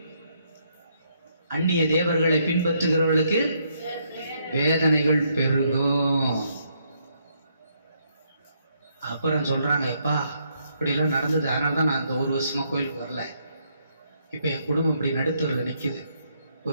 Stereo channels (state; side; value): inverted; both; correlation -0.74